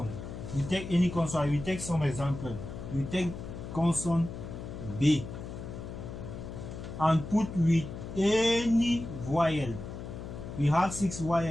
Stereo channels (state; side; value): noise; left; hum, 9 dB below the sound